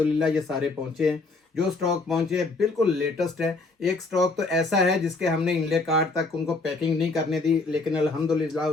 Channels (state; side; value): quieter; right; 3.6 dB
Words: ये सारे पहुँचे हैं। जो स्टॉक पहुंचे हैं बिल्कुल लेटेस्ट है। एक स्टॉक तो ऐसा है जिसके हमने इंले कार्ड तक उनको पैकिंग नहीं करने दी, लेकिन अल्हम्दुलिल्लाह